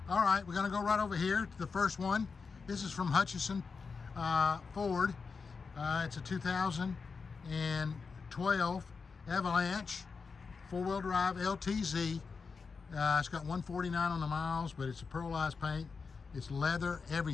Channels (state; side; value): quieter; right; 5.0 dB